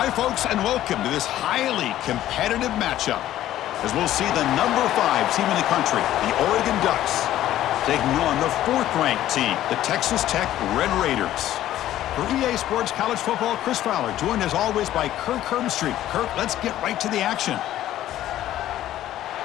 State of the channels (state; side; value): quieter; right; 13.1 dB